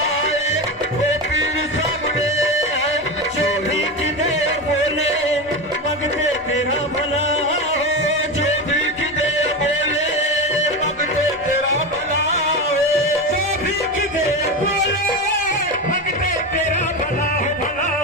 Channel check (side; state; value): both; normal; correlation 0.19